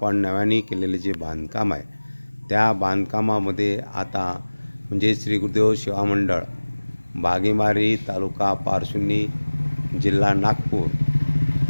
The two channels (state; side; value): inverted; both; correlation -1.00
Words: नव्याने केलेले जे बांधकाम आहे त्या बांधकामामध्ये आता म्हणजे श्री गुरुदेव सेवा मंडळ भांगीमारी तालुका पारशिवनी जिल्हा नागपूर